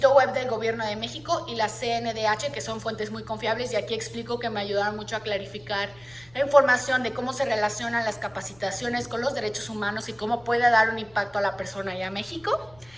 web del Gobierno de México y la CNDH, que son fuentes muy confiables y aquí explico que me ayudaron mucho a clarificar la información de cómo se relacionan las capacitaciones con los derechos humanos y cómo puede dar un impacto a la persona y a México.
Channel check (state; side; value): noise; left; rumble, 27 dB below the sound